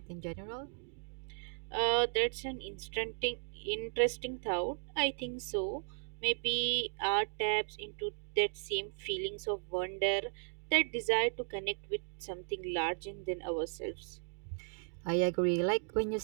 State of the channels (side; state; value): left; silent; digital silence